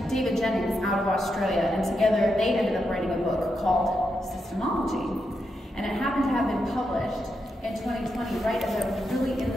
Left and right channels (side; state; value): both; normal; correlation 0.84